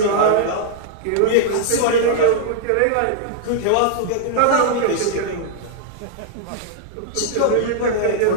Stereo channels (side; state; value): both; different; correlation -0.01